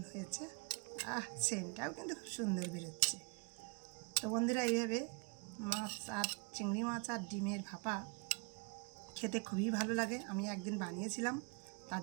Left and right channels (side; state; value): left; quieter; 31.4 dB